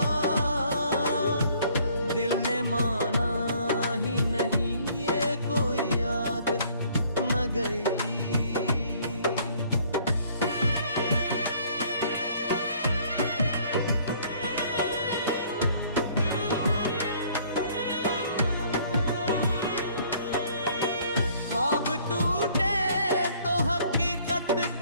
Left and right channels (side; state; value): both; inverted; correlation -0.59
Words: दिल ने माना ही नहीं, ये कोई आदत न गई। ख्वाब टूटे तो हकीकत